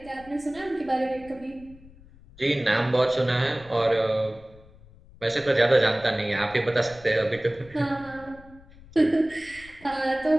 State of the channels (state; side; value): noise; left; rumble, 23 dB below the sound